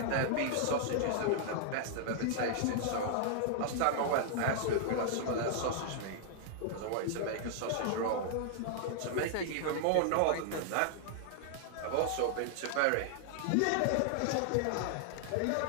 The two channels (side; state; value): both; different; correlation -0.01